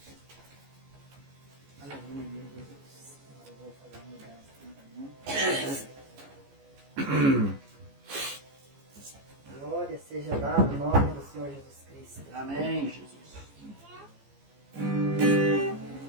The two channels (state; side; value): late; left; 14 ms